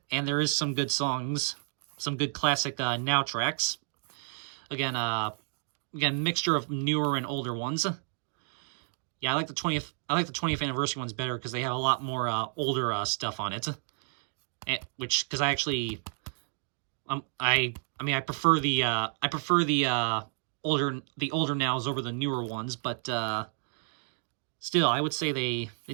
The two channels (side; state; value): left; silent; digital silence